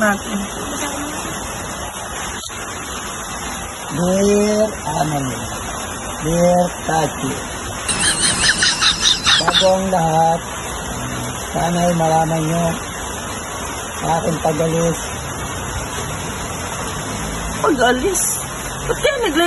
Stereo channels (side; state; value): both; identical; correlation 1.00